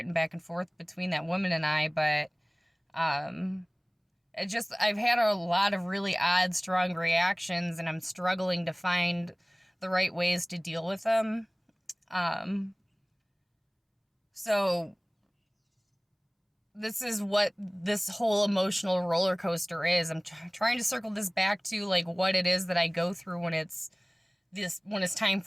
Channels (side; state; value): both; identical; correlation 1.00